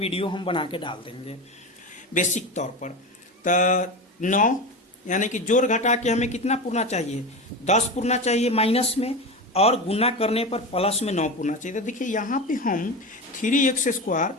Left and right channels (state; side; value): normal; both; correlation 0.23